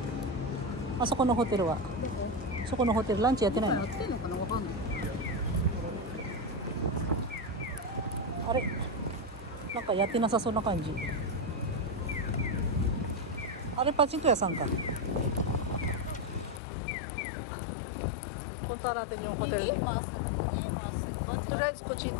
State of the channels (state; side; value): drops out; right; at 16.6 s